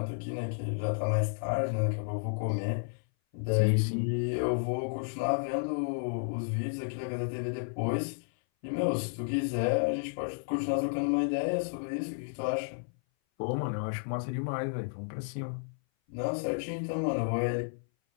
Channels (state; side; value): silent; right; 56 dB below the other